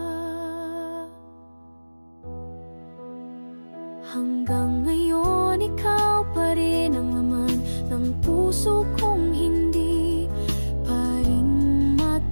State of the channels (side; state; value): both; inverted; correlation -1.00